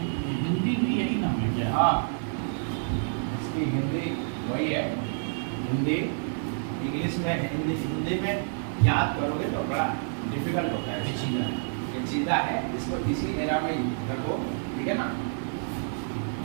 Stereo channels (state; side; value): silent; left; digital silence